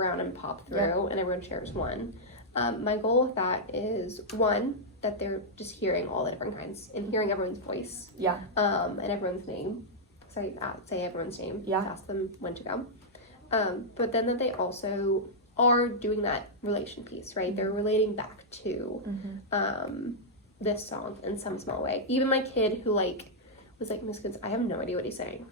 and pop through, and everyone shares one. My goal with that is, one, that they're just hearing all the different kinds and hearing everyone's voice. And everyone's name. So I say everyone's name. Ask them when to go. But then that they also are doing that relation piece, right? They're relating back to this song in some small way. Even my kid who was like, Miss Goods, I have no idea what he's saying.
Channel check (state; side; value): normal; both; correlation -0.07